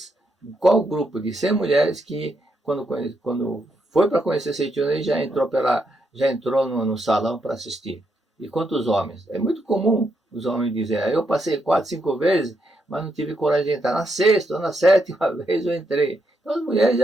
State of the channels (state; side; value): normal; both; correlation 0.79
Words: qual grupo de 100 mulheres que, quando foi para conhecer Seichoné, já entrou no salão para assistir. E quantos homens? É muito comum os homens dizerem, eu passei 4, 5 vezes, mas não tive coragem de entrar. Na 6ª ou na 7ª vez eu entrei. Então as mulheres